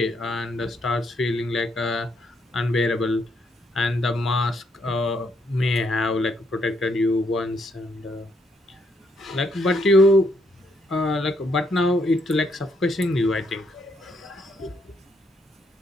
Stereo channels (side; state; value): both; normal; correlation 0.74